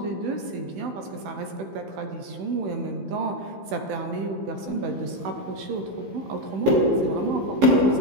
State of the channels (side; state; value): left; late; 16 ms